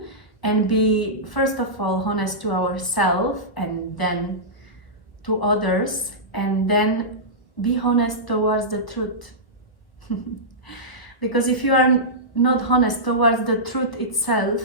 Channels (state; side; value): late; right; 1.3 ms